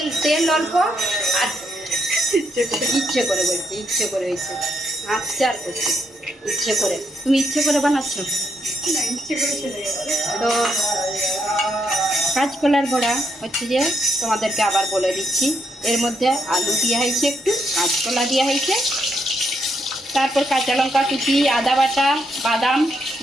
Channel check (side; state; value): both; normal; correlation 0.77